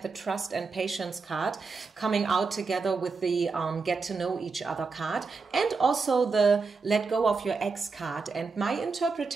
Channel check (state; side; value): quieter; left; 4.5 dB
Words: the trust and patience card coming out together with the get to know each other card, and also the let go of your ex card. And my